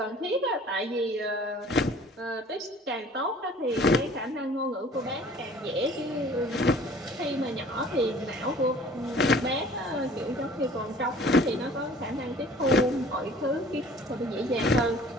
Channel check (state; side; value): normal; both; correlation 0.51